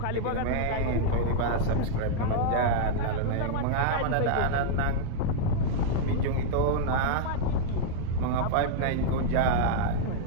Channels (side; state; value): both; different; correlation -0.01